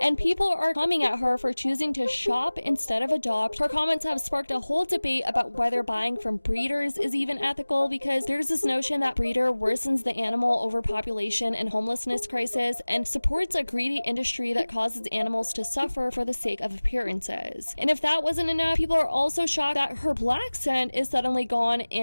and people are coming at her for choosing to shop instead of adopt. Her comments have sparked a whole debate about whether buying from breeders is even ethical, because there's this notion that breeder worsens the animal overpopulation and homelessness crisis and supports a greedy industry that causes animals to suffer for the sake of appearances. And if that wasn't enough, people are also shocked that her black scent is suddenly gone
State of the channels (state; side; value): inverted; both; correlation -1.00